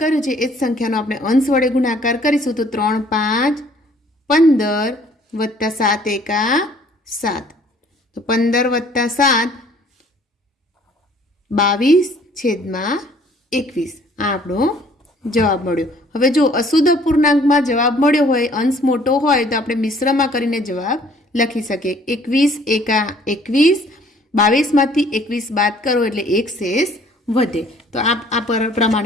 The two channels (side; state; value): both; normal; correlation 0.57